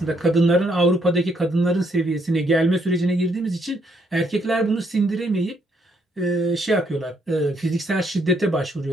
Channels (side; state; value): both; normal; correlation 0.72